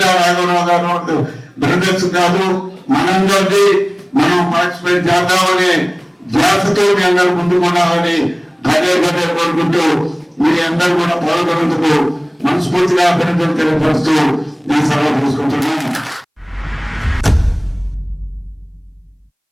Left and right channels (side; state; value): both; identical; correlation 1.00